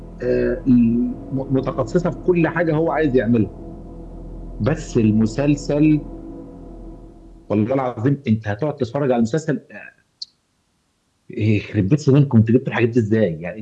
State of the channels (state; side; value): identical; both; correlation 1.00